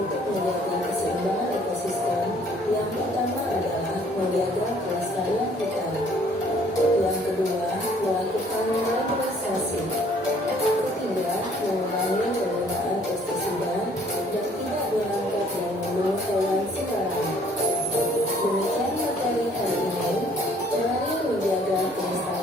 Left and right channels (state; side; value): normal; both; correlation 0.59